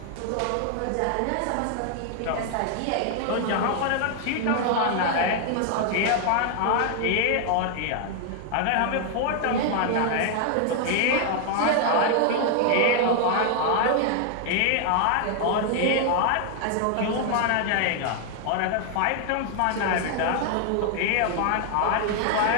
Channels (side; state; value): both; different; correlation 0.00